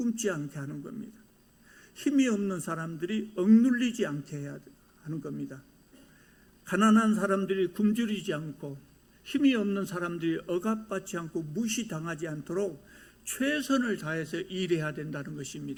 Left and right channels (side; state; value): both; identical; correlation 1.00